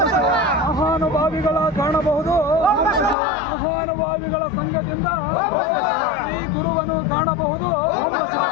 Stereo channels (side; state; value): right; drops out; at 3.2 s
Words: ಮಹಾನುಭಾವಿಗಳ ಕಾಣಬಹುದು ಮಹಾನುಭಾವಿಗಳ ಸಂಘದಿಂದ ಈ ಗುರುವನ್ನು ಕಾಣಬಹುದು